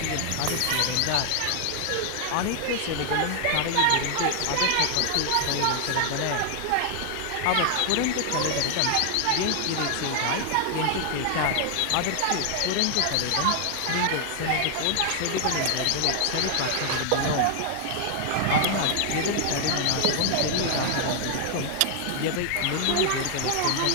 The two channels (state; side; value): different; both; correlation 0.00